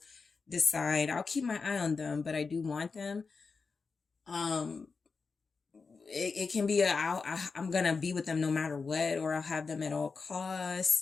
decide, I'll keep my eye on them, but I do want them. It can be I'm going to be with them no matter what, or I'll have them at all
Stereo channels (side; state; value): right; quieter; 4.7 dB